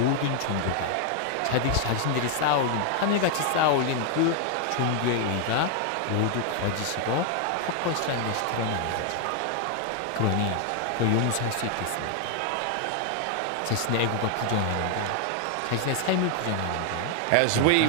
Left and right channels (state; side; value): different; both; correlation 0.00